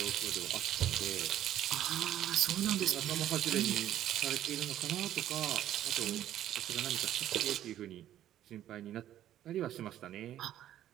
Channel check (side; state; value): left; quieter; 12.0 dB